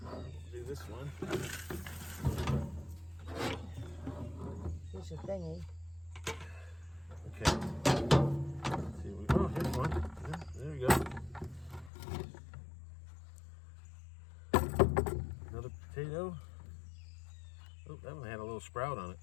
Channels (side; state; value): right; drops out; at 11.9 s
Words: do this one. Here's your thingy. Okay. Let's see, oh, here's one. Yeah, there we go. Another potato. Oh, that one had a little sprout on it.